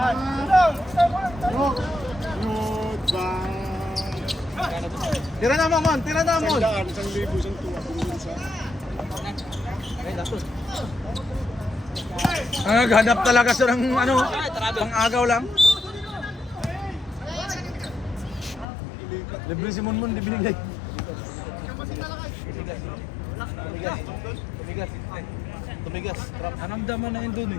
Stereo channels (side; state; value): right; drops out; at 18.7 s